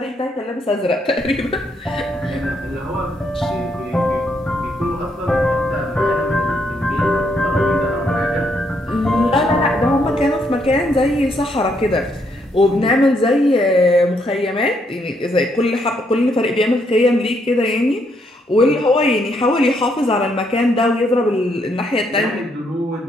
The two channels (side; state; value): both; normal; correlation 0.74